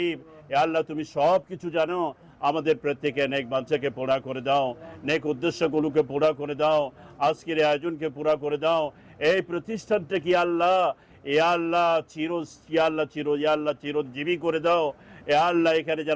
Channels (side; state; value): both; identical; correlation 1.00